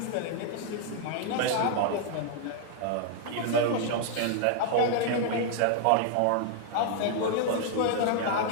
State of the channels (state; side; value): different; both; correlation 0.00